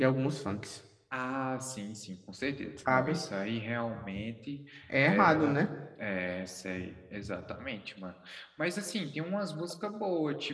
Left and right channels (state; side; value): identical; both; correlation 1.00